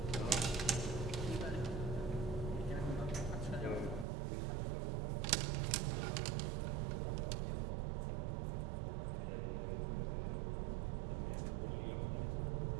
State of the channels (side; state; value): left; drops out; at 4.0 s